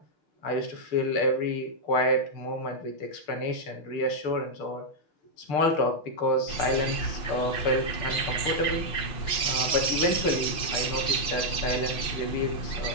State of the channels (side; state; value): right; late; 5.8 ms